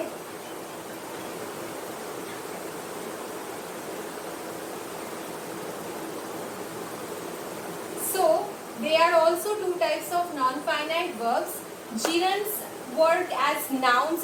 So there are also two types of non-finite verbs. Gerunds work as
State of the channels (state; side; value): identical; both; correlation 1.00